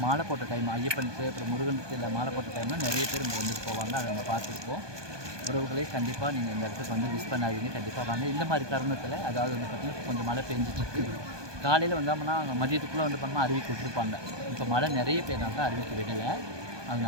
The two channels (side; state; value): left; late; 1.2 ms